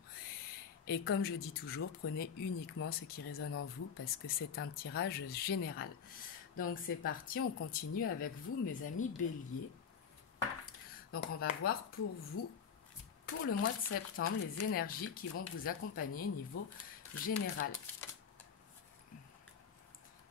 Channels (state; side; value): quieter; right; 6.9 dB